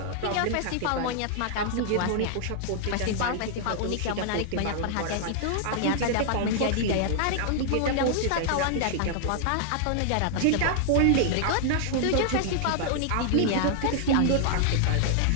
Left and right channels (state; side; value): different; both; correlation -0.01